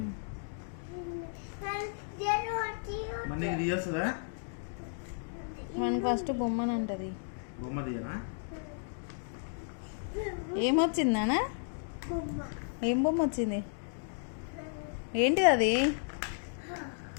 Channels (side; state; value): right; silent; digital silence